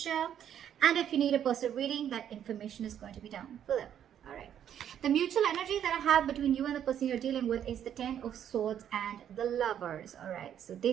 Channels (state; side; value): quieter; left; 9.7 dB